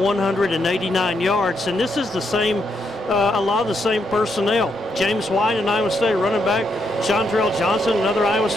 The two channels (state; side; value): normal; both; correlation 0.78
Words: yards. And this is the same, a lot of the same personnel. James White, an Iowa State running back. Chantrell Johnson, another Iowa